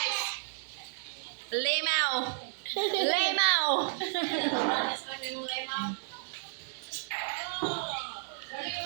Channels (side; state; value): left; silent; digital silence